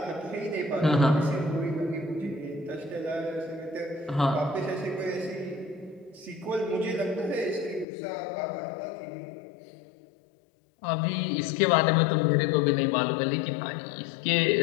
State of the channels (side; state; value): right; drops out; at 7.9 s